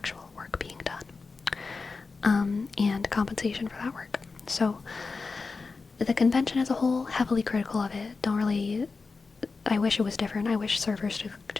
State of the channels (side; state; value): right; quieter; 4.3 dB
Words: work being done, and compensation for that work. So the convention as a whole, heavily critical of it. I wish it was different. I wish servers